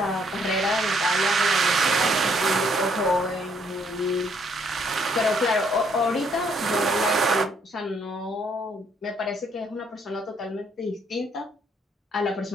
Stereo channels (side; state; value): both; normal; correlation 0.68